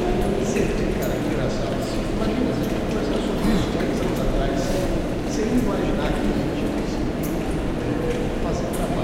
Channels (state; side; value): identical; both; correlation 1.00